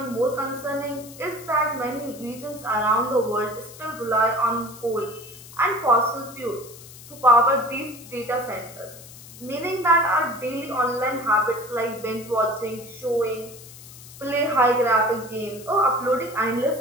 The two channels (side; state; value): left; noise; hiss, 17 dB below the sound